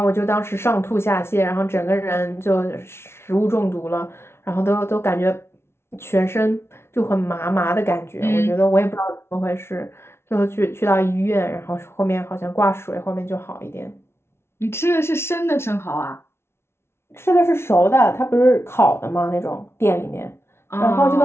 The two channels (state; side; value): late; right; 0.12 ms